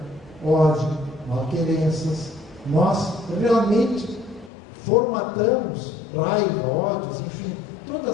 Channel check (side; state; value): right; drops out; at 4.5 s